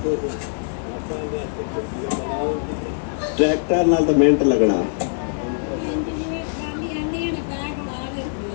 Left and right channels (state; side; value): silent; right; digital silence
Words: ट्रैक्टर नाल तो मिनट लगना